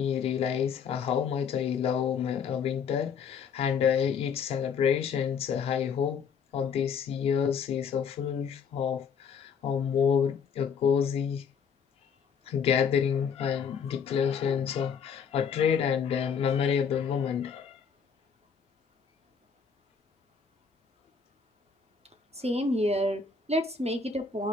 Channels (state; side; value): quieter; right; 6.4 dB